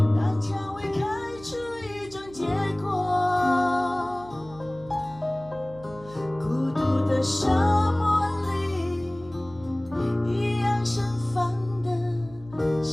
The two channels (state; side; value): noise; right; hum, 20 dB below the sound